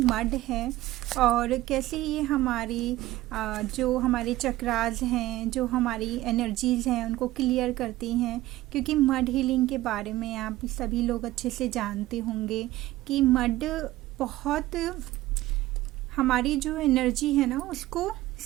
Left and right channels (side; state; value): left; quieter; 16.5 dB